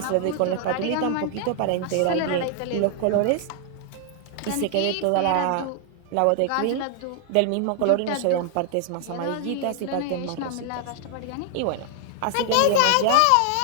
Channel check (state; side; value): different; both; correlation 0.00